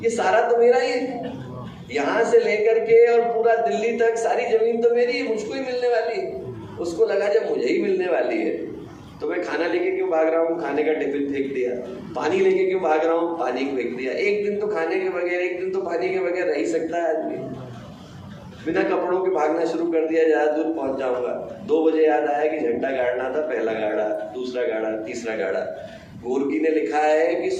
ये सारा तो मेरा ही है, यहाँ से लेकर के और पूरा दिल्ली तक सारी जमीन तो मेरी है, मुझको ही मिलने वाली है। उसको लगा जब मुझे ही मिलने वाली है तो मैं खाना लेके क्यों भाग रहा हूँ, खाने का टिफिन फेंक दिया। पानी लेके क्यों भाग रहा हूँ, पानी को फेंक दिया। एक दिन तो खाने के बगैर, एक दिन तो पानी के बगैर रह ही सकता है आदमी। बिना कपड़ों के भागना शुरू कर दिया, ज्यादा दूर पहुंच जाऊंगा। 2 बजे याद आया कि झंडा गाड़ना था, पहला गाड़ा, दूसरा गाड़ा, तीसरा गाड़ा। गोर्की ने लिखा है कि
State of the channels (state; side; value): identical; both; correlation 1.00